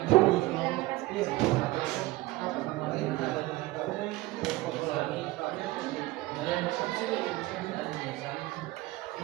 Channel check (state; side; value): quieter; left; 19.1 dB